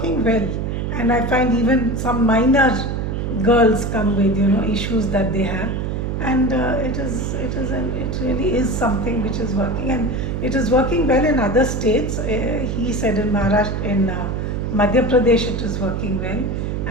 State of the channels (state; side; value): noise; right; hum, 2 dB below the sound